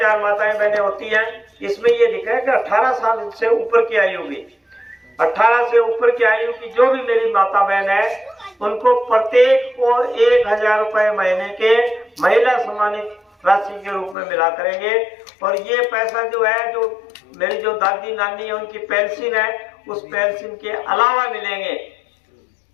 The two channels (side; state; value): right; drops out; at 14.2 s